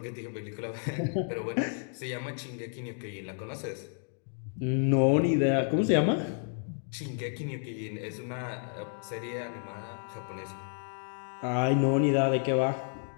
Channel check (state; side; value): silent; right; 57 dB below the other